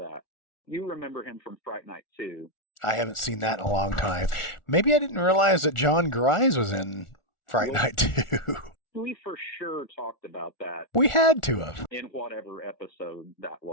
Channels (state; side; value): late; right; 1.4 ms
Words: I haven't seen that in a long time. Maybe I didn't realize that John Grise was in Fright Night 2. We had to have.